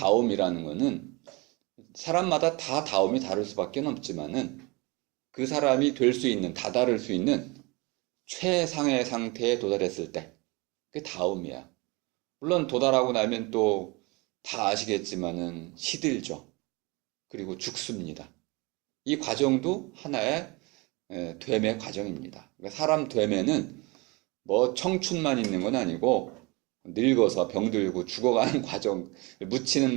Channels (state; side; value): quieter; left; 26.3 dB